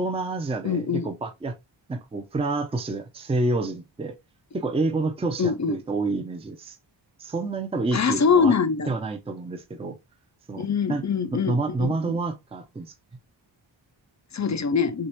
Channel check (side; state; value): both; normal; correlation 0.37